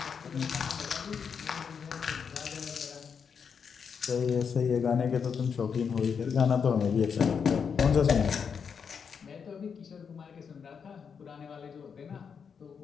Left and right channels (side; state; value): right; quieter; 6.5 dB